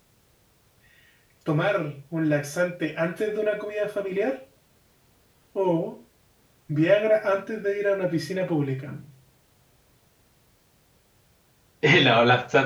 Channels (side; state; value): both; identical; correlation 1.00